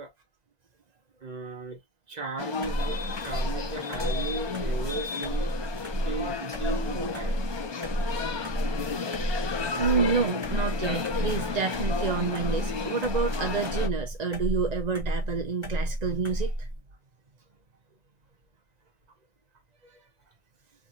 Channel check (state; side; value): late; left; 1.2 ms